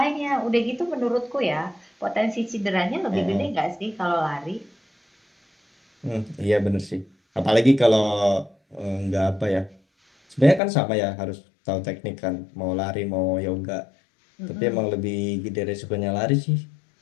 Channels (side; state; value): right; drops out; at 10.6 s